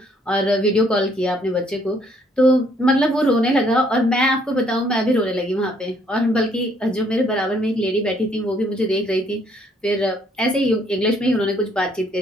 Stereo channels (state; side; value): normal; both; correlation 0.66